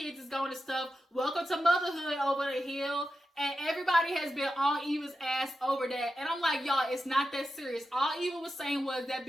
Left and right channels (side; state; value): both; normal; correlation 0.90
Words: is going and stuff. Welcome to motherhood over the hill. And everybody has been on Eva's ass over that. And I'm like, y'all, it's not that serious. All Eva was saying was that